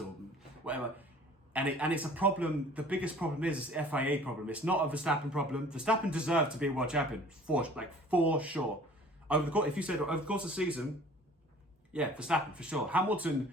or whatever. And it's a problem. The biggest problem is the FIA problem. It's not a Verstappen problem. Verstappen deserved to be a world champion for sure. Over the course of the season, yeah, Verstappen for sure. Hamilton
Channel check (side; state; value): both; normal; correlation 0.49